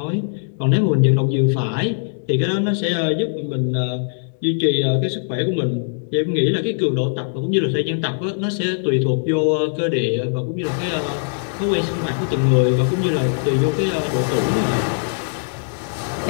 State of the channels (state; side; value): silent; right; digital silence